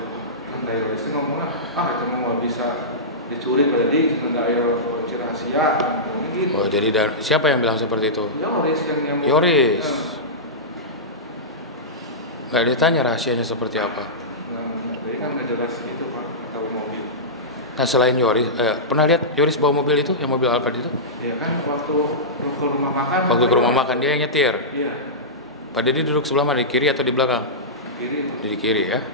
Kan dari itu ngomongnya itu mau bisa dicuri pada di nggak ada kunci rahasia gitu. Oh, jadi siapa yang bilang seperti itu? Yoris yang Yoris. Nggak ditanya rahasianya seperti apa. Nah, jadi kan nggak jelas gitu Pak atau mobil. Nah, selain Yoris, pernah lihat Yoris bawa mobil itu, yang mobil Alphard itu? Iya kan waktu ke rumah makan. Waktu ke rumah makan dia yang nyetir. Iya. Pak Dedi duduk sebelah mana, di kiri atau di belakang? Kiri. Di kiri ya.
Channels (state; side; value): normal; both; correlation -0.16